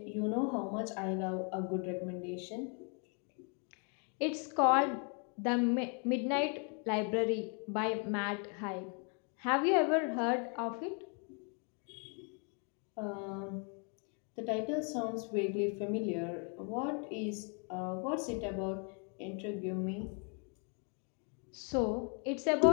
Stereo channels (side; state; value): right; quieter; 38.6 dB